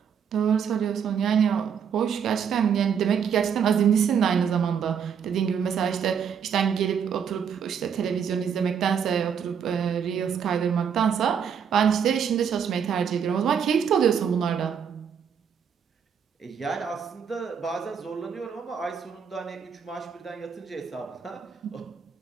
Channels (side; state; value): left; quieter; 7.4 dB